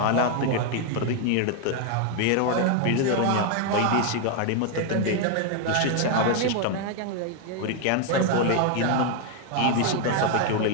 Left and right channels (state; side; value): different; both; correlation 0.01